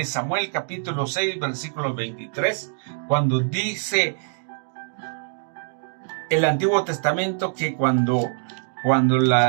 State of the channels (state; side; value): silent; left; digital silence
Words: Samuel capítulo 6 versículo 23, cuando dice el Antiguo Testamento que cuando